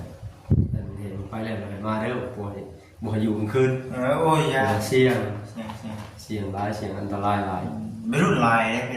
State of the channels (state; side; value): identical; both; correlation 1.00